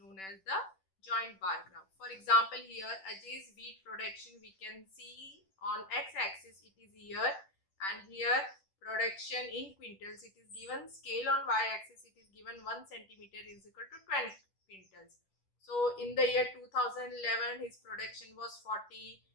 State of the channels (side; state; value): right; late; 10 ms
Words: as the joint bar graph. For example, here Ajay's wheat production we can see on x-axis it is here, and here production in quintals it is given. Scale on y-axis it is given 1 centimeter is equal to 20 quintals. So in the year 2011 his production was 40.